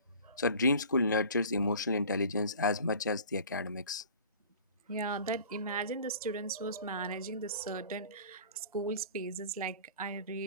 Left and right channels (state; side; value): inverted; both; correlation -0.44